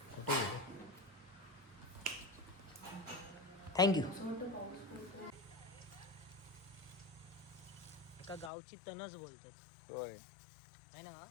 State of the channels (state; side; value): drops out; right; at 8.5 s